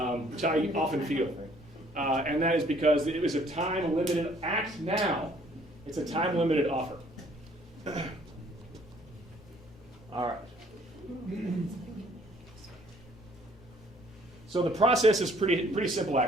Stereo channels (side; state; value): both; normal; correlation 0.60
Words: Which I often feel. And that is because it was a time-limited act now. It's a time-limited offer. All right. So the process is pretty simple,